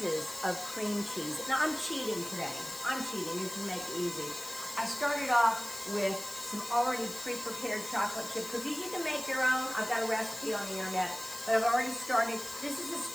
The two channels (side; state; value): left; noise; hiss, 11 dB below the sound